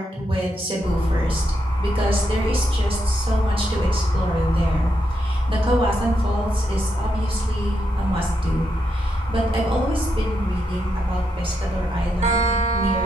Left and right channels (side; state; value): both; normal; correlation 0.81